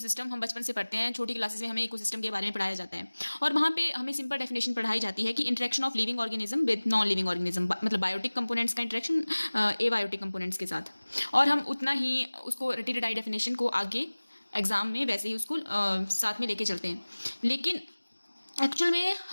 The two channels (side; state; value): both; inverted; correlation -1.00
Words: हम बचपन से पढ़ते हैं, छोटी क्लासेस में हमें इकोसिस्टम के बारे में पढ़ाया जाता है और वहाँ पे हमें सिंपल डेफिनेशन पढ़ाई जाती है कि interaction of living organism with non living organism, मतलब बायोटिक कंपोनेंट्स का इंटरेक्शन एबायोटिक कंपोनेंट्स के साथ। और हम उतना ही उसको रटी रटाई डेफिनेशन को आगे एग्जाम में वैसे ही उसको साथ में लेके चलते हैं। लेकिन एक्चुअल में